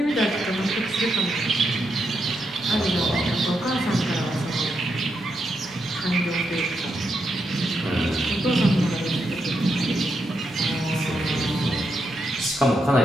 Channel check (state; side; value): normal; both; correlation 0.82